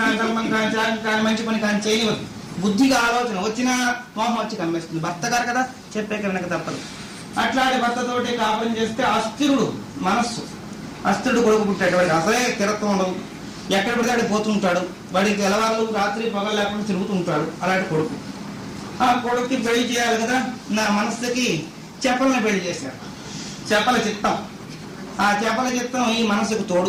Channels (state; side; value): identical; both; correlation 1.00